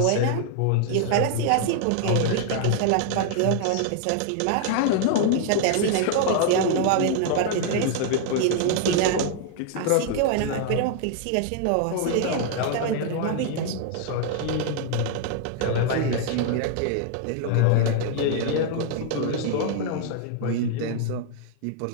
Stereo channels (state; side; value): different; both; correlation 0.00